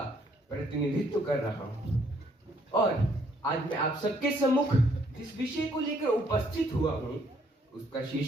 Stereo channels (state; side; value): normal; both; correlation 0.67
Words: प्रतिनिधित्व कर रहा हूं और आज मैं आप सबके सम्मुख जिस विषय को लेकर उपस्थित हुआ हूं उसका